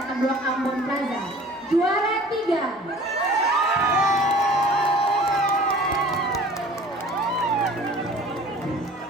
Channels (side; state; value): both; normal; correlation 0.46